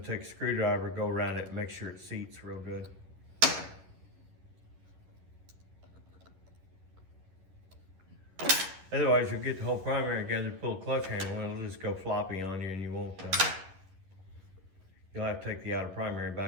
take a screwdriver, go around it, and make sure it seats real good. Otherwise, you'll get the whole primary together, pull a clutch handle, and it'll just go floppy on you, and you won't. You'll have to take the outer primary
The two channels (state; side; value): late; left; 11 ms